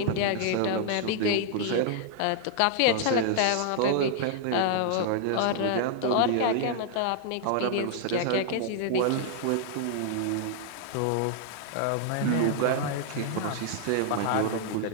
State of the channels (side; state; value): both; different; correlation -0.01